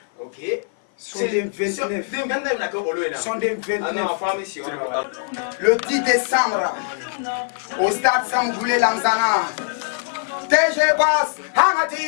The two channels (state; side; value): silent; right; 56 dB below the other